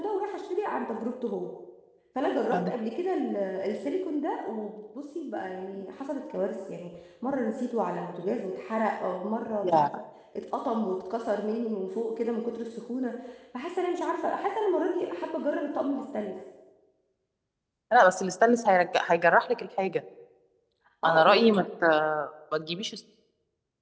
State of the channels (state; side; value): identical; both; correlation 1.00